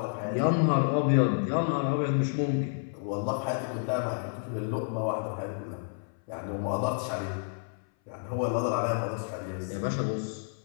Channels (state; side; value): silent; right; 58 dB below the other